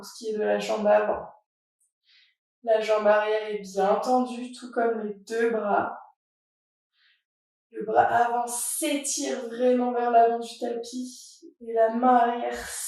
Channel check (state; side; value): identical; both; correlation 1.00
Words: ce qui est de la jambe avant. La jambe arrière est bien tendue, tout comme les deux bras. Le bras avant s'étire vraiment vers l'avant du tapis et la main arrière